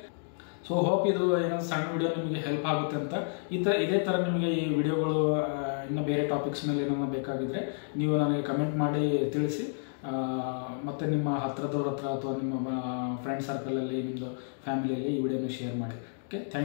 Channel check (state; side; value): silent; right; digital silence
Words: ಸೊ ಹೋಪ್ ಇದು ಏನೋ ಸಣ್ಣ ವಿಡಿಯೋ ನಿಮಗೆ ಹೆಲ್ಪ್ ಆಗುತ್ತೆ ಅಂತ. ಇದೇ ಥರ ನಿಮಗೆ ಈ ವಿಡಿಯೋಗಳು ಇನ್ನು ಬೇರೆ ಟಾಪಿಕ್ಸ್ ಮೇಲೆ ಏನಾದ್ರು ಬೇಕಾಗಿದ್ದರೆ ನೀವು ನನಗೆ ಕಮೆಂಟ್ ಮಾಡಿ ತಿಳಿಸಿ. ಮತ್ತು ನಿಮ್ಮ ಹತ್ರದವ್ರ ಹತ್ರ ಅಥವಾ ನಿಮ್ಮ ಫ್ರೆಂಡ್ ಸರ್ಕಲಲ್ಲಿ ನಿಮ್ಮದು ಫ್ಯಾಮಿಲಿಯಲ್ಲಿ ಈ ವಿಡಿಯೋನ ಶೇರ್ ಮಾಡಿ. ಓಕೆ,